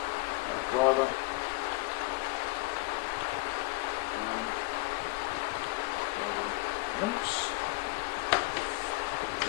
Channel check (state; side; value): quieter; right; 23.6 dB